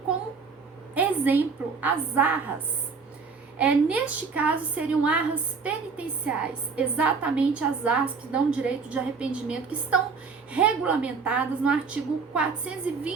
como exemplo, as arras. Neste caso, seriam arras penitenciais, exatamente as arras que dão direito de arrependimento, que estão regulamentadas no artigo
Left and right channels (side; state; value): left; quieter; 5.0 dB